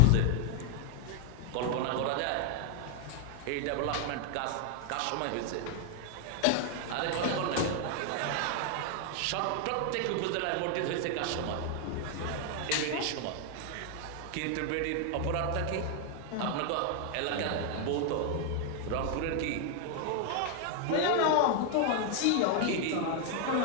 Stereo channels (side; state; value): both; different; correlation 0.00